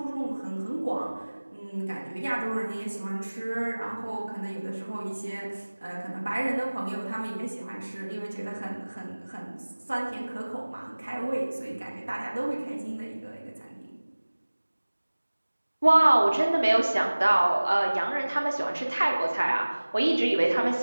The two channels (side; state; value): both; inverted; correlation -1.00